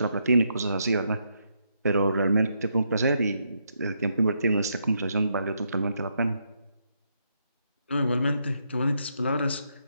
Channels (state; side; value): inverted; both; correlation -0.78